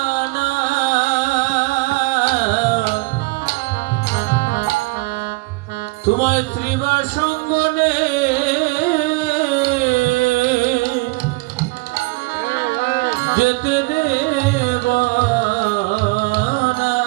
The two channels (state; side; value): quieter; left; 25.8 dB